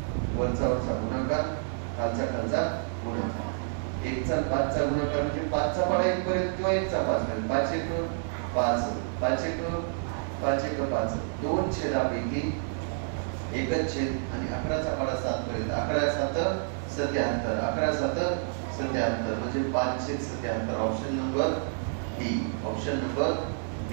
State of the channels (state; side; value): silent; left; digital silence